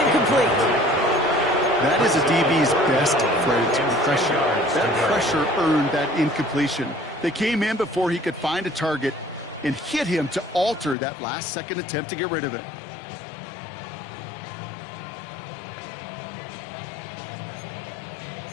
That is a DB's best friend, pressure. That pressure earned that incompletion. They came in before he could find a target and hit him to alter that last-second attempt to get rid of it.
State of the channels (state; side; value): drops out; right; at 11.0 s